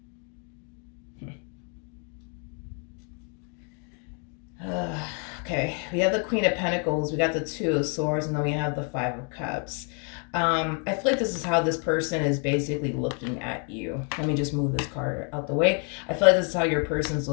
Okay, we have the Queen of Pentacles, we got the Two of Swords, and then we have the Five of Cups. I feel like this is how this person is basically looking at you. Let me just move this card out the way. I feel like this is how your person's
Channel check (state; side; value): quieter; right; 39.3 dB